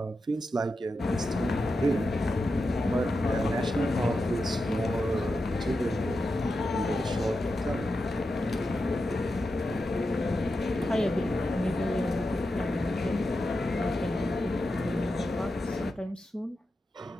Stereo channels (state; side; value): normal; both; correlation 0.89